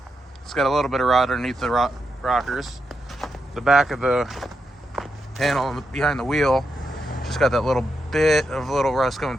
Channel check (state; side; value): normal; both; correlation 0.85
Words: It's got a little bit of rot underneath the rockers. The back of the panel behind the wheel just got that little bit of little rust coming